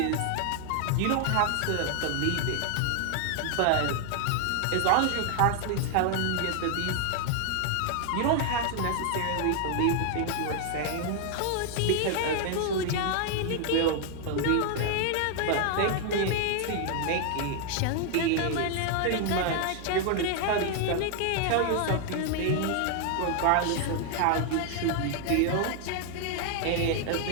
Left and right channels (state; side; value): different; both; correlation 0.00